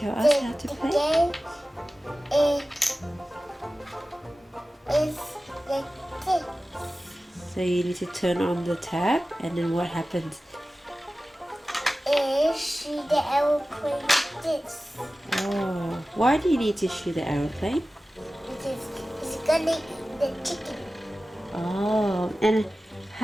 us how to play? The game is like this. So you need to turn on the tab, and then what happens? Shoot the aeroplane like this. Oh, why do you need to shoot the aeroplane? Because it's gonna eat the chicken. Oh, and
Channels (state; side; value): normal; both; correlation 0.96